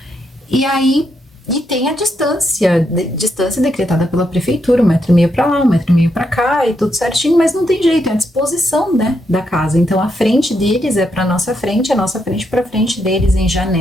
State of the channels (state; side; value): normal; both; correlation 0.80